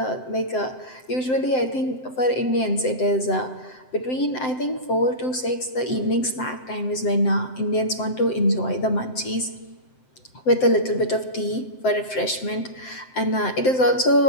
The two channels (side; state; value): right; late; 7.8 ms